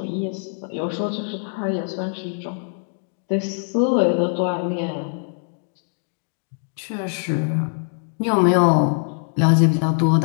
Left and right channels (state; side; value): silent; right; digital silence